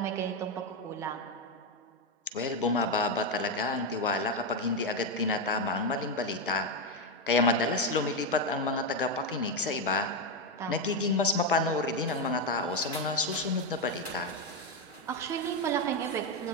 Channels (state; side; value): normal; both; correlation 0.07